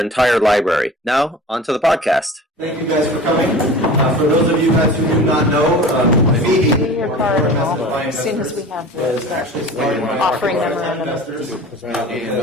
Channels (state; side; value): normal; both; correlation 0.39